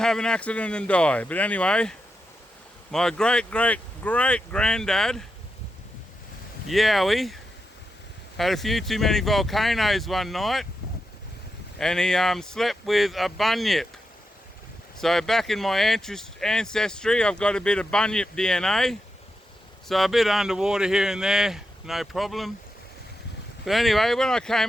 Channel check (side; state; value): both; normal; correlation 0.87